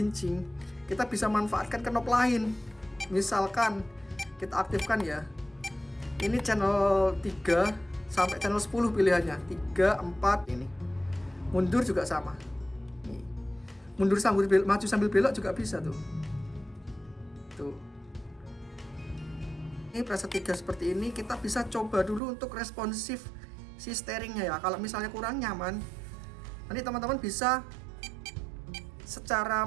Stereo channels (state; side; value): drops out; left; at 22.2 s